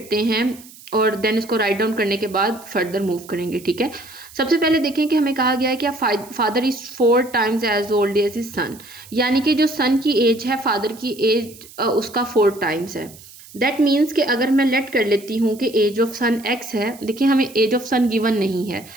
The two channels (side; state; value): right; noise; hiss, 20 dB below the sound